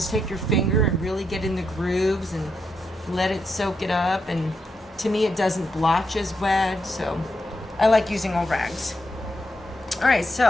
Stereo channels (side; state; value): both; normal; correlation 0.82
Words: take your finger and really get in the grooves and let it soak it up, and to me it doesn't blotch as bad, so I like using old rags. Alright,